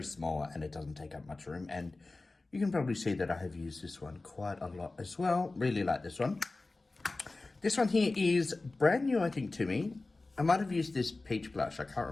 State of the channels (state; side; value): quieter; right; 3.3 dB